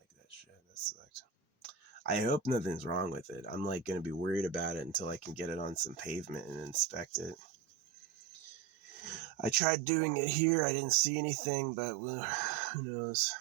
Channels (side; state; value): left; drops out; at 9.6 s